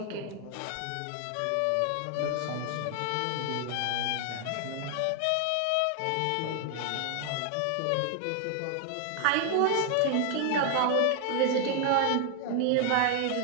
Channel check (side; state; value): both; different; correlation 0.00